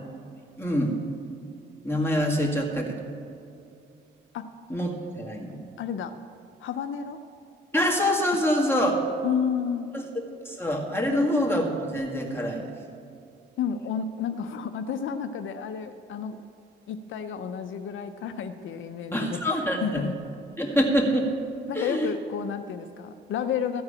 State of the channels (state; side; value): normal; both; correlation 0.54